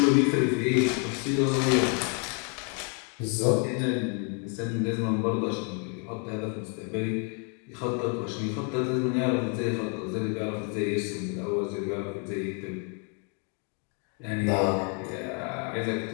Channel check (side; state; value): right; quieter; 39.1 dB